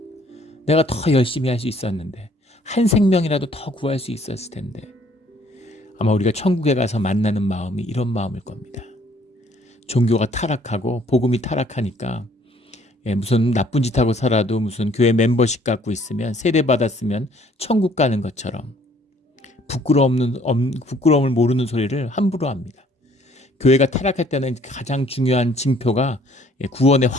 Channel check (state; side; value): normal; both; correlation 0.60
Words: 내가 더 열심히 할 수 있었는데, 한 생명이라도 더 구할 수 있었을 텐데, 아마 우리가 천국에 가서 만나는 마음이 이런 마음일 겁니다. 종교가 타락하고 복음이 타락하니까 무슨 나쁜 짓 하고 살아도 무슨 교회 멤버십 갖고 있으면, 세례 받았으면 천국 가는 것처럼 부끄러움을 모르는 소리를 함부로 합니다. 교회가 타락할 때는 가장 중요한 징표가 구원의